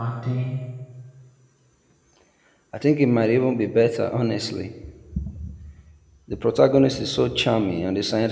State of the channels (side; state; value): both; identical; correlation 1.00